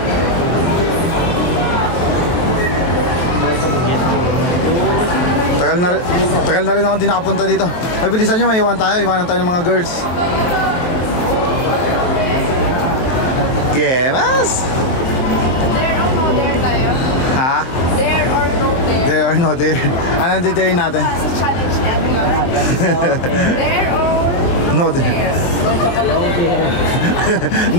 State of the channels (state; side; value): late; right; 23 ms